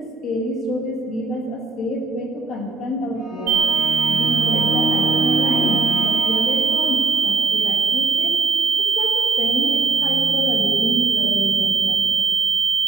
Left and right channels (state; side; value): quieter; left; 4.0 dB